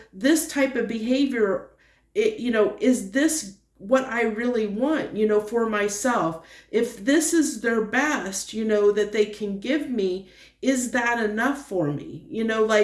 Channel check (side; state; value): both; identical; correlation 1.00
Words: this type of behavior, is this what I really want, for myself? If this is their best, that they can give me, is that enough for me?